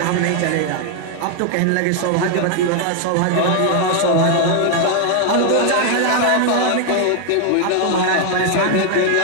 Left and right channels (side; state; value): both; different; correlation 0.00